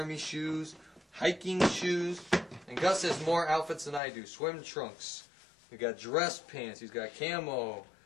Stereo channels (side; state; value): right; drops out; at 4.0 s